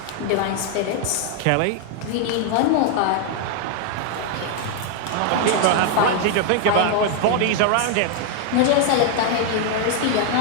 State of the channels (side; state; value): both; different; correlation 0.00